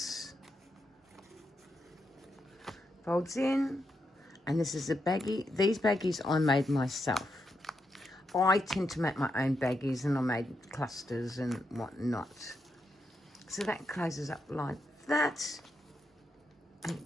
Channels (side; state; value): both; normal; correlation 0.83